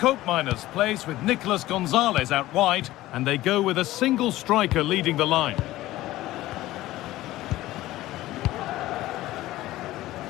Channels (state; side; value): quieter; right; 16.3 dB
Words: plays with Nicolas Gonzalez out wide, and they go with a single striker leading the line.